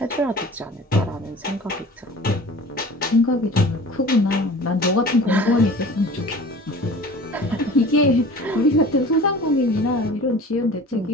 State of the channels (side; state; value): both; normal; correlation 0.42